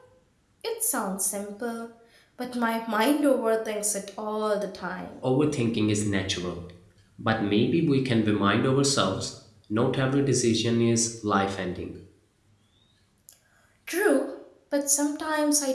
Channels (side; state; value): both; identical; correlation 1.00